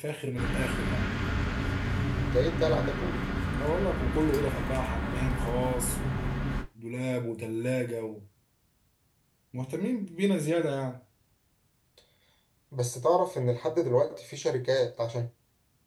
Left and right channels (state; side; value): identical; both; correlation 1.00